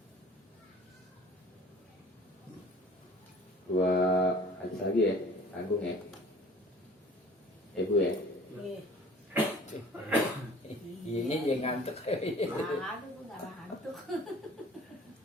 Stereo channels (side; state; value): both; normal; correlation 0.48